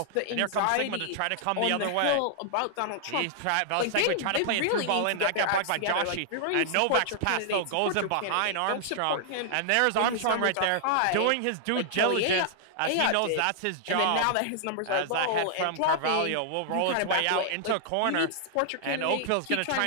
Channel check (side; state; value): both; different; correlation -0.01